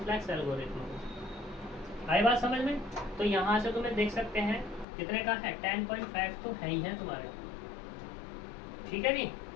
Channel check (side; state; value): right; drops out; at 4.9 s